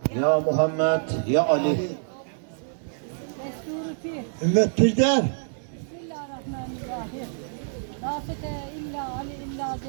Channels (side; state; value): left; silent; digital silence